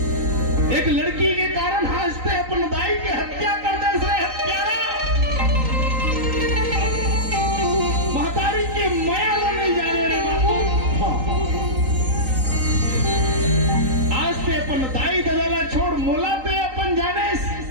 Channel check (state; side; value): late; left; 3.9 ms